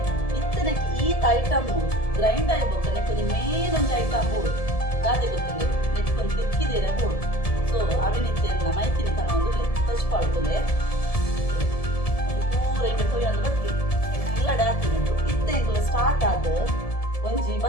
ಇತ್ತನಕ್ಕೆ ಈತ ಐಟಮ್ ಗ್ರೈಂಡ್ ಆಗಿಬೇಕು ನೆಕ್ಕೊಂಡು ಮೇಲೊಂದು ಐಟಮ್ ಬೋಡು ಗಾದೆ ಗೊತ್ತಿಲ್ಲ ನೆಕ್ಕೊಂಡು ತಿಕ್ಕಿದ್ದೀರ ಬೋಡು ಸೊ ಅವಿನಿತ್ತೆಲ್ಲ ಮೈತಿನಿ ತನ ಒಂದು ತಚ್ಪಾಳ್ತದೆ ಪೂರ ಈಗ ತೊಯ್ಯೊಂದು ಬತ್ತಿ ಇಲ್ಲ ಡಾಕ್ತಿನಿ ಇತ್ತೆ ಎಂಕುಲ ಸ್ಟಾರ್ಟ್ ಆದ ಒಂಜಿ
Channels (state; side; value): late; right; 1.7 ms